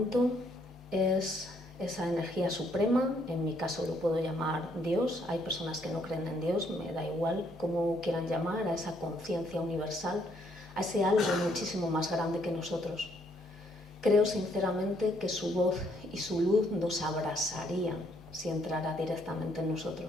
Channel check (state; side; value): normal; both; correlation 0.69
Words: es esa energía suprema. En mi caso lo puedo llamar Dios. Hay personas que no creen en Dios, me da igual cómo quieran llamar a esa conciencia universal, a ese algo muchísimo más grande que nosotros. Creo sinceramente que su voz y su luz nos abrasarían si entrara directamente en